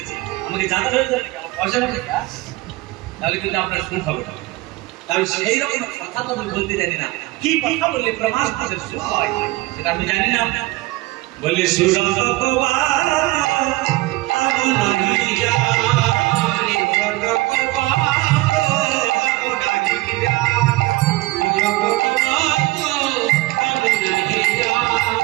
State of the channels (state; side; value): quieter; left; 20.2 dB